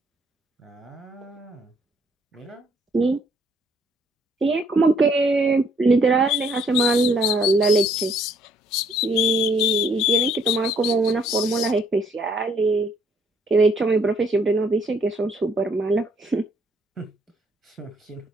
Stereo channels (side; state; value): both; normal; correlation 0.66